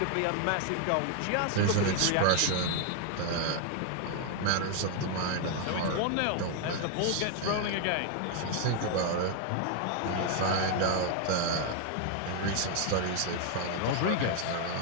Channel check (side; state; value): both; different; correlation 0.00